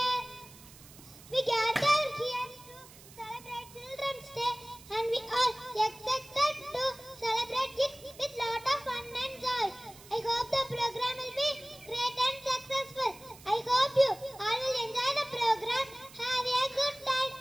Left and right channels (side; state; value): right; noise; hiss, 20 dB below the sound